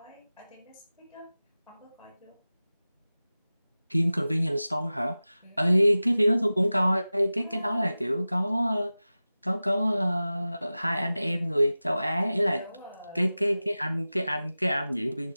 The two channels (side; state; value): both; inverted; correlation -0.97